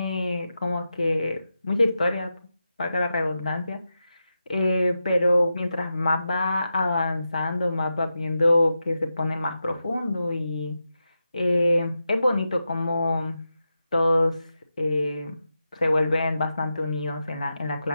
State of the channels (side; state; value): both; inverted; correlation -0.89